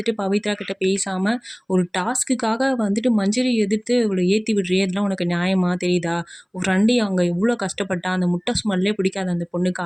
பவித்ரா கிட்ட பேசாம, ஒரு டாஸ்க்குக்காக வந்துட்டு மஞ்சரி எதிர்த்து இவள ஏத்தி விடுறியே! இதெல்லாம் உனக்கு நியாயமா? தெரியுதா? உன் ஃப்ரெண்டு அங்க எவ்ளோ கஷ்டப்பட்டா! அந்த முட்டை ஸ்மெல்லே பிடிக்காது அந்த பொண்ணுக்கு.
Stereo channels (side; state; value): both; identical; correlation 1.00